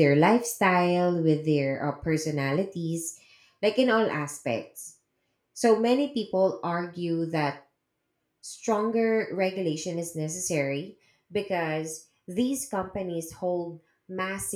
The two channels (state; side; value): identical; both; correlation 1.00